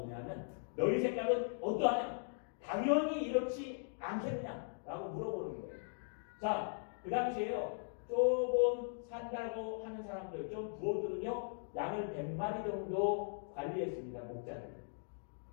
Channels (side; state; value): right; silent; digital silence